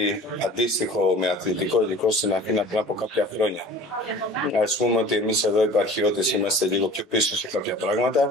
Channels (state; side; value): normal; both; correlation 0.44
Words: αντίστοιχο με αθλητικό υλικό στην Αθήνα πριν από κάποια χρόνια. Ας πούμε ότι εμείς εδώ οι επαρχιώτες είμαστε λίγο πιο πίσω σε κάποια